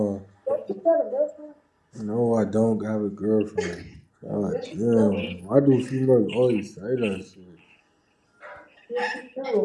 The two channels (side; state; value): both; identical; correlation 1.00